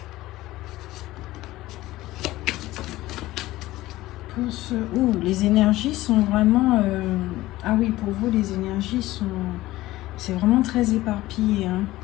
Les énergies sont vraiment... Ah oui, pour vous, les énergies sont... C'est vraiment très éparpillé. Hein.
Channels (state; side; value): quieter; right; 17.0 dB